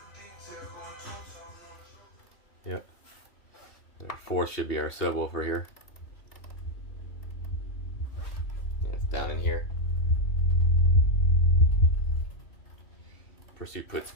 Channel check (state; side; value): late; right; 2.7 ms